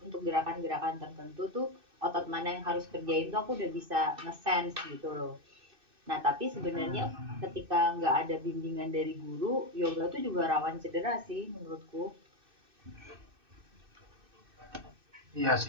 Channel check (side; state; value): left; late; 2.6 ms